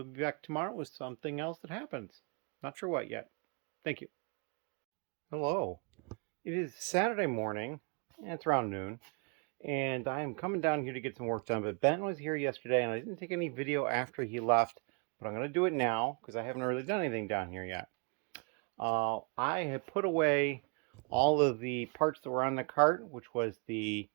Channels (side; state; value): left; quieter; 36.9 dB